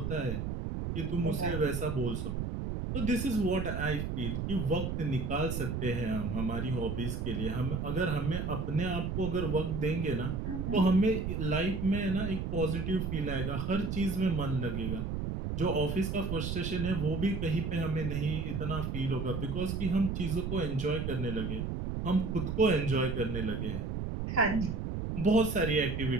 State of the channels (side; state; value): right; noise; rumble, 2 dB below the sound